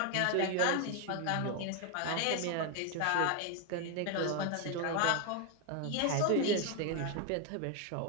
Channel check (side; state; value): both; different; correlation 0.01